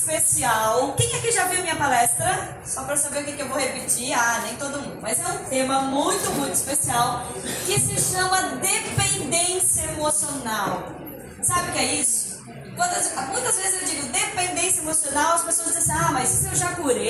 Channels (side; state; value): both; identical; correlation 1.00